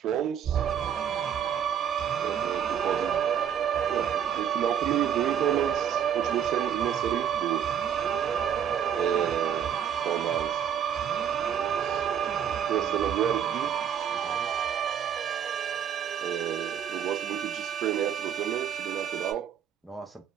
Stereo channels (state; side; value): quieter; left; 8.7 dB